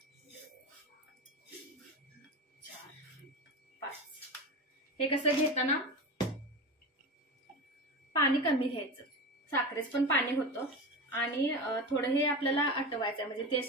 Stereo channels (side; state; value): both; normal; correlation 0.25